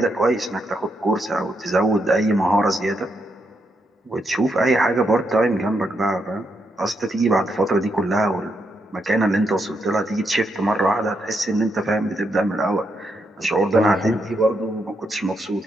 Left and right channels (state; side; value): normal; both; correlation 0.80